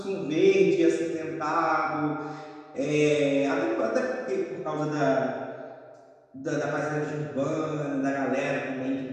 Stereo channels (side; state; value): both; identical; correlation 1.00